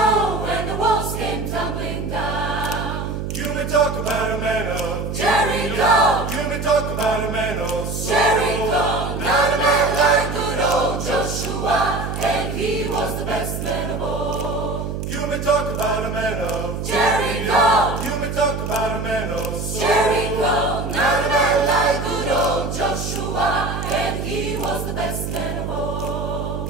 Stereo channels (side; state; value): right; noise; hum, 4 dB below the sound